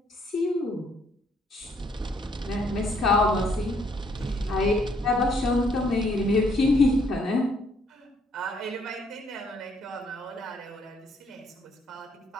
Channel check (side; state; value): both; normal; correlation 0.68